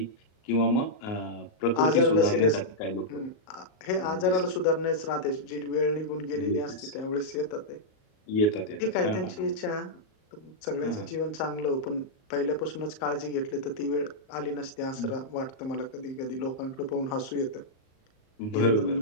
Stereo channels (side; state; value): right; late; 38 ms